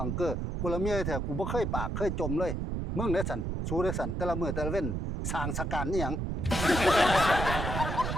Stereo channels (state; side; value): noise; right; rumble, 2 dB below the sound